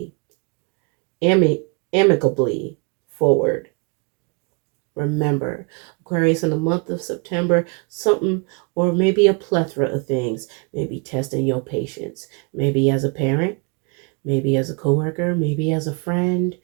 amicably forward. Remember, Aquarius, in the month of September, something or maybe a plethora of things may be testing your patience. Maybe as a parent, maybe as a coworker, maybe as a friend,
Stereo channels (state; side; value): quieter; left; 32.2 dB